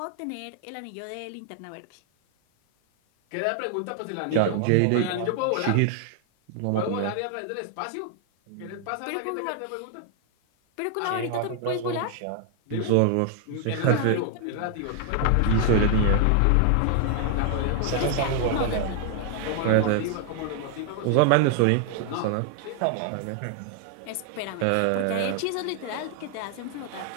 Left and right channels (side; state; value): both; different; correlation 0.00